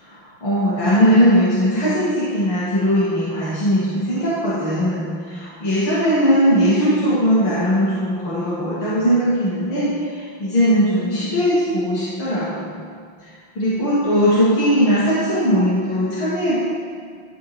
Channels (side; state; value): right; late; 5.9 ms